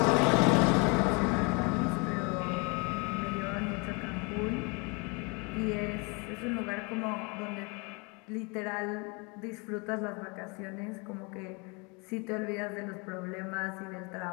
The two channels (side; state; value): right; quieter; 30.5 dB